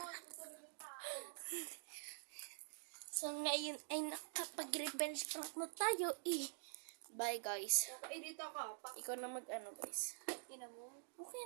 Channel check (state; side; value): silent; left; digital silence